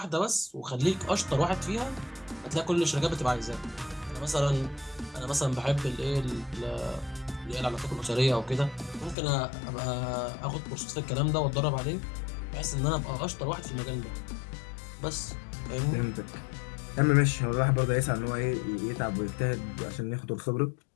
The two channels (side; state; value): right; drops out; at 9.2 s